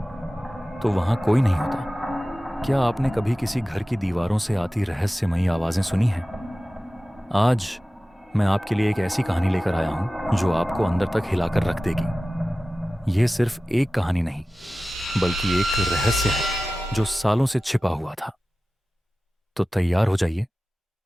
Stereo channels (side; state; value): both; normal; correlation 0.96